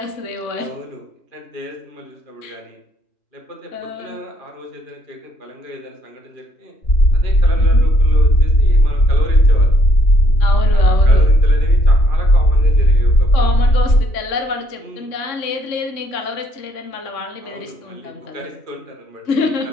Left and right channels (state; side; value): late; right; 3.6 ms